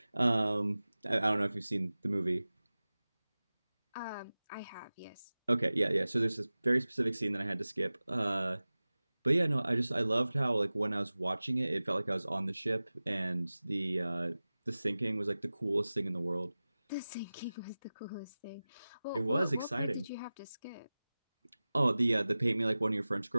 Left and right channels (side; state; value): both; inverted; correlation -0.98